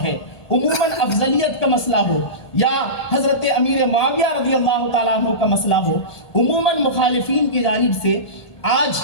ہے، عموماً افضلیت کا مسئلہ ہو یا حضرت امیر معاویہ رضی اللہ تعالیٰ عنہ کا مسئلہ ہو، عموماً مخالفین کی جانب سے آج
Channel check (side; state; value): right; late; 1.2 ms